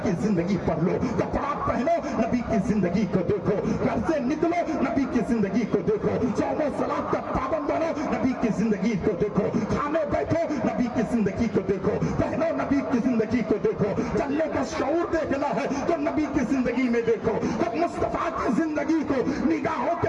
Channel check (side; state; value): both; identical; correlation 1.00